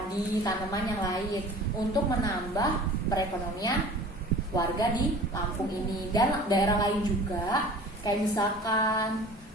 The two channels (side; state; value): both; normal; correlation 0.43